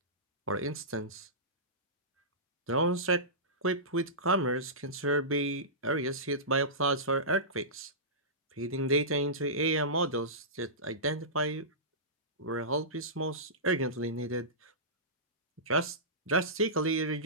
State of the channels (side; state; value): both; normal; correlation -0.19